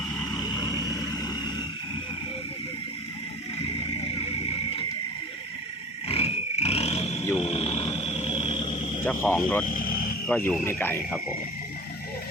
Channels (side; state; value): both; normal; correlation 0.39